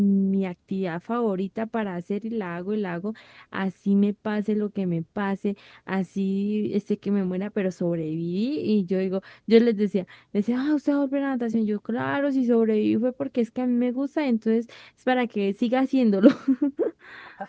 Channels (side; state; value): both; identical; correlation 1.00